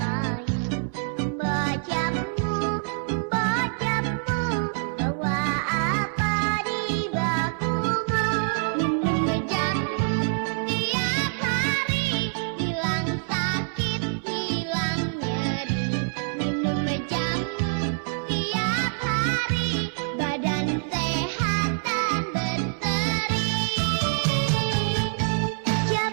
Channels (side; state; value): left; silent; 60 dB below the other